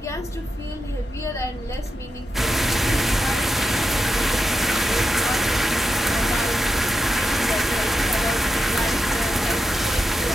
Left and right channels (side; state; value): both; normal; correlation 0.87